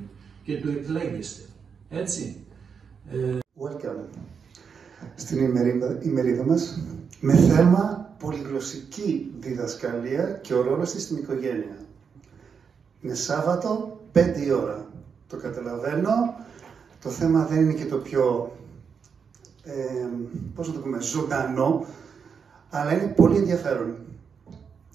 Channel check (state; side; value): quieter; left; 6.3 dB